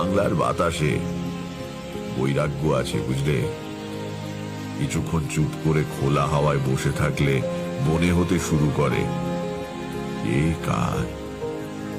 বাতাসে বৈরাগ্য আছে, বুঝলে। কিছুক্ষণ চুপ করে খোলা হাওয়ায় বসে থাকলে মনে হতে শুরু করে, এই কার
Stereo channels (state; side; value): identical; both; correlation 1.00